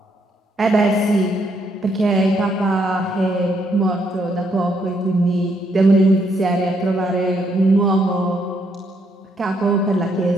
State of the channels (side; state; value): both; normal; correlation 0.74